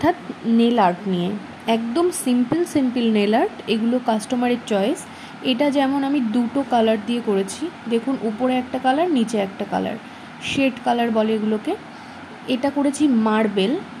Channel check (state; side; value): identical; both; correlation 1.00